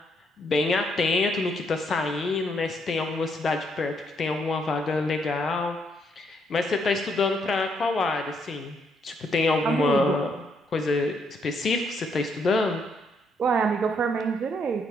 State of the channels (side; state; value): both; normal; correlation 0.73